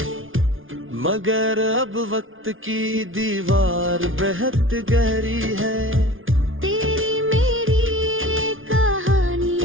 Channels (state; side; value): late; left; 0.58 ms